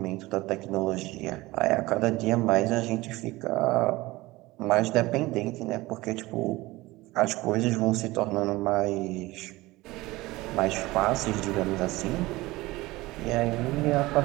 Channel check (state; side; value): quieter; left; 19.9 dB